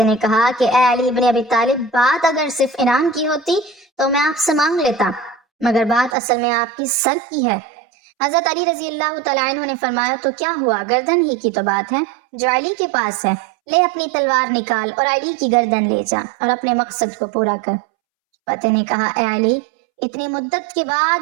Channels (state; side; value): drops out; left; at 6.2 s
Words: نے کہا کہ اے علی ابن ابی طالب، بات اگر صرف انعام کی ہوتی تو میں آپ سے مانگ لیتا، مگر بات اصل میں آپ کی سر کی ہے۔ حضرت علی رضی اللہ تعالیٰ عنہ نے فرمایا تو کیا ہوا، گردن ہی کی تو بات ہے جو علی کے پاس ہے، لے اپنی تلوار نکال اور علی کی گردن لے جا اور اپنے مقصد کو پورا کر۔ فتح نے کہا اے علی، اتنی مدت کے